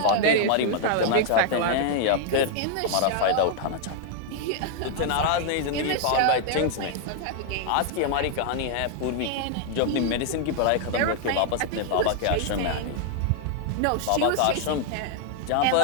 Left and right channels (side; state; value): both; different; correlation 0.00